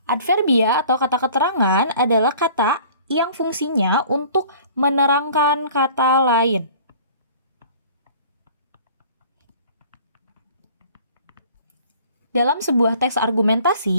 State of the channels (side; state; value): both; inverted; correlation -0.48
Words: Adverbia atau kata keterangan adalah kata yang fungsinya untuk menerangkan kata lain. Dalam sebuah teks